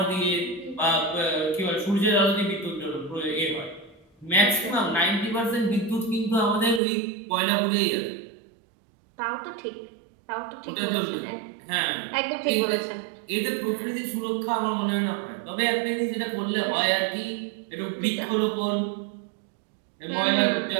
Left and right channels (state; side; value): drops out; left; at 6.8 s